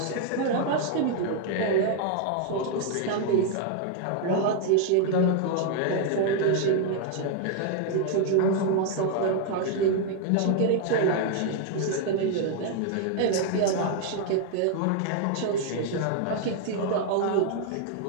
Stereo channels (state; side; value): different; both; correlation 0.00